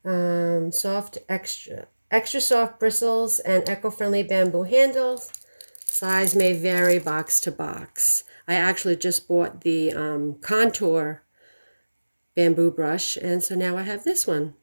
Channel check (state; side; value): inverted; both; correlation -1.00